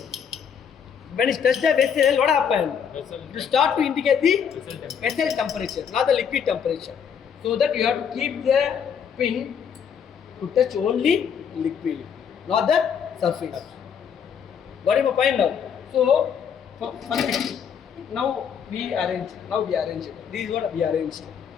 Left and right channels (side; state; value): right; quieter; 7.5 dB